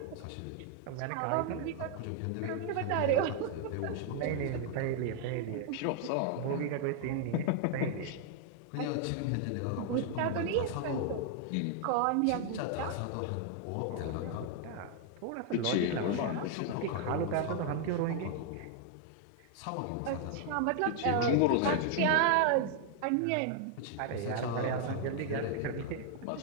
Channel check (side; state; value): both; different; correlation 0.00